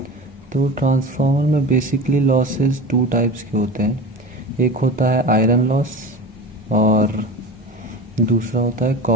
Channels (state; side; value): normal; both; correlation 0.32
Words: तो ट्रांसफॉर्मर में बेसिकली लॉसेस 2 टाइप्स के होते हैं। एक होता है आयरन लॉस, और दूसरा होता है